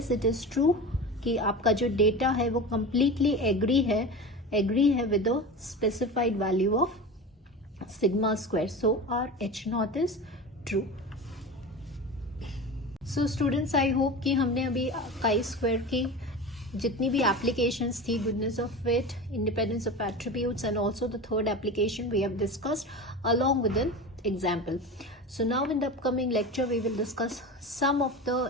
इट इज ट्रू कि आपका जो डेटा है वो कंप्लीटली एग्री है with the specified value of sigma square, so our h0 is true. So students, I hope कि हमने अभी काई स्क्वायर की जितनी भी एप्लीकेशंस थी, goodness of fit, independence of attributes and also the third application we have discussed along with an example. So now in the upcoming lecture we will discuss some of the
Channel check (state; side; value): normal; both; correlation 0.29